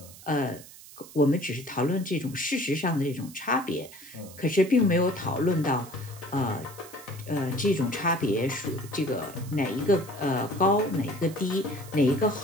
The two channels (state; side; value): noise; right; hiss, 18 dB below the sound